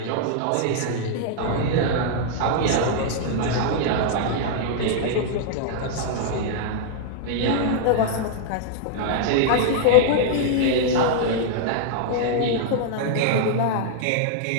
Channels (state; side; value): different; both; correlation -0.01